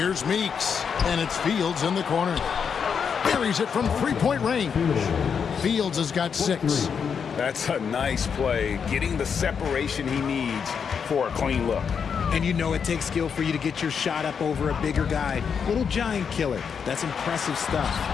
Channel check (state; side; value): quieter; right; 6.7 dB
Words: Meeks, and it's Fields in the corner. Buries it from three-point range. Fields has got 6. That's a nice play, getting the separation he needs for a clean look. And you know it takes skill for you to get your shot up over a bigger guy. Little giant killer. That's impressive stuff.